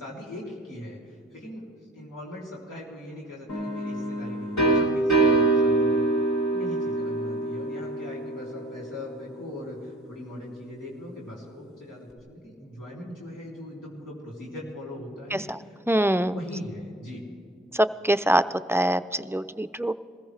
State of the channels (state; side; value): normal; both; correlation 0.50